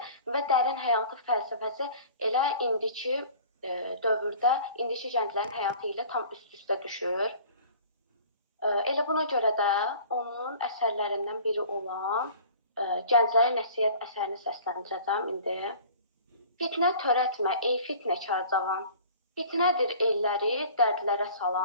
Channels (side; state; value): both; inverted; correlation -0.46